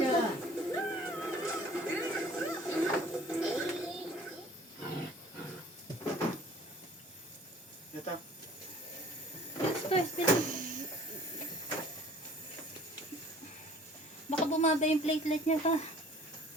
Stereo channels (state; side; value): normal; both; correlation 0.51